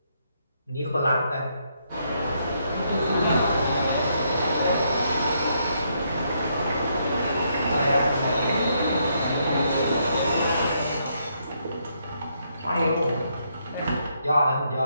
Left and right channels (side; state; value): both; inverted; correlation -0.75